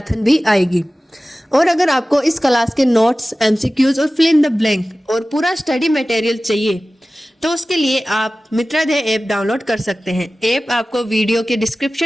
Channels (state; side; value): normal; both; correlation 0.96